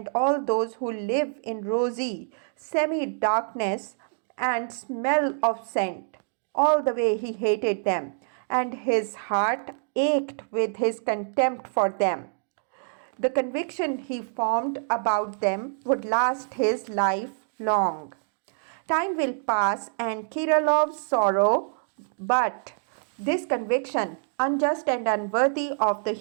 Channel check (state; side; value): silent; left; digital silence